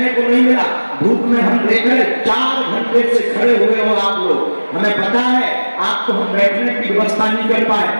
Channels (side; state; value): both; inverted; correlation -1.00